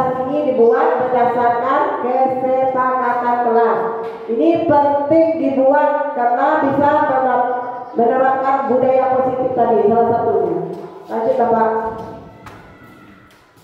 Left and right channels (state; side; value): identical; both; correlation 1.00